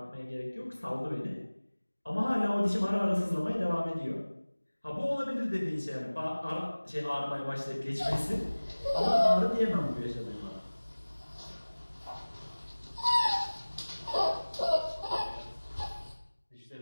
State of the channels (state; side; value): inverted; both; correlation -1.00